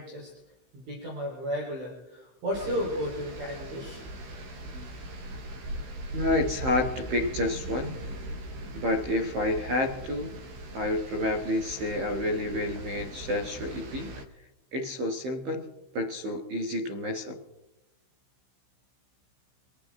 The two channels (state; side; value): late; left; 16 ms